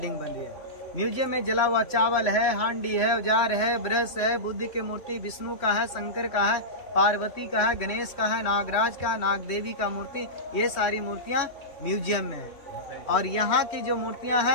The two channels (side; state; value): right; late; 3.1 ms